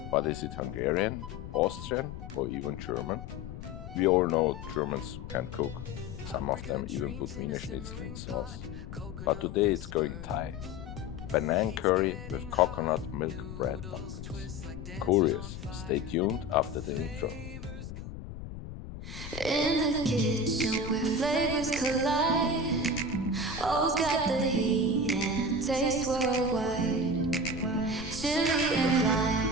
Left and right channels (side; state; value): left; noise; rumble, 10 dB below the sound